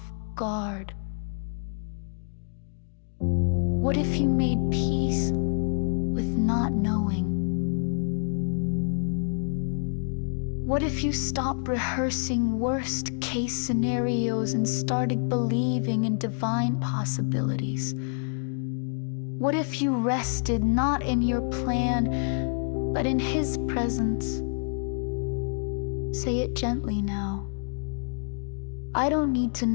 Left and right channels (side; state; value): right; silent; digital silence